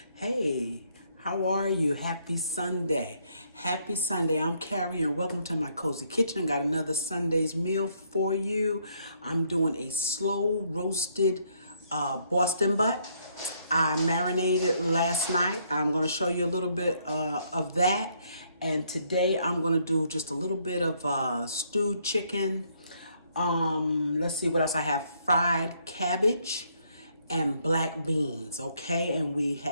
Hey, how are you? Happy Sunday. Happy Sunday. I'm Carrie and welcome to my cozy kitchen. Got another Sunday's meal for you. I'm doing a slow roasted Boston butt. I marinated last night. I'm going to show you a little bit of that. And today I'm going to do just a little bit of stewed chicken. Let's see what else I have. Fried cabbage and black beans, okay? And we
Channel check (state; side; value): inverted; both; correlation -0.70